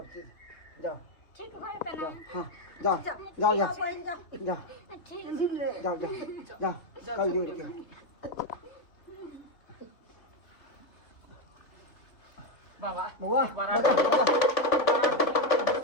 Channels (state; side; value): late; right; 3.3 ms